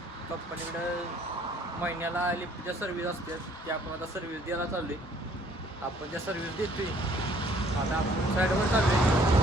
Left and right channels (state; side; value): normal; both; correlation 0.60